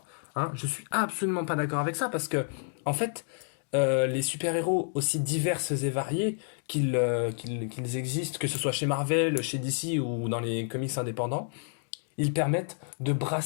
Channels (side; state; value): right; silent; 58 dB below the other